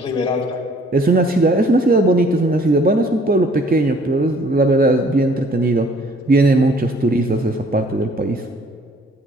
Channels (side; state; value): both; normal; correlation 0.58